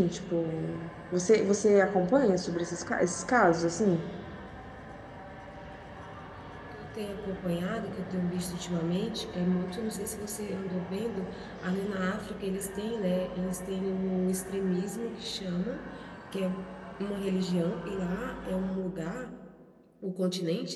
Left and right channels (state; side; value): identical; both; correlation 1.00